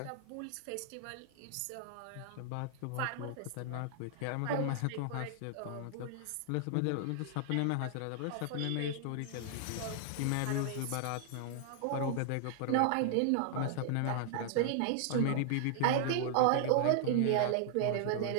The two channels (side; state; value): both; different; correlation 0.00